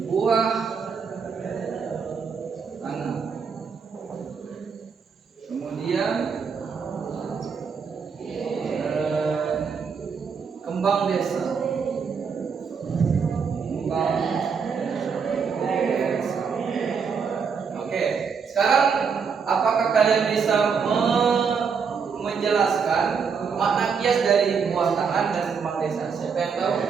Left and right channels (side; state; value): left; quieter; 6.0 dB